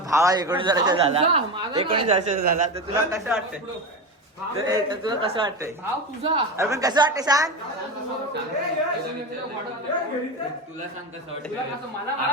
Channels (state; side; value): normal; both; correlation 0.20